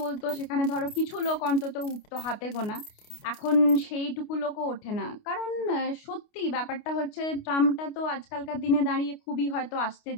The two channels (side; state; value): right; late; 29 ms